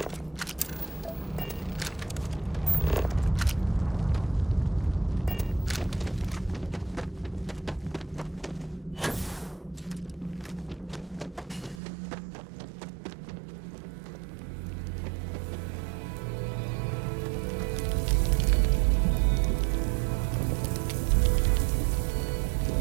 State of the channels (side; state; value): left; drops out; at 11.8 s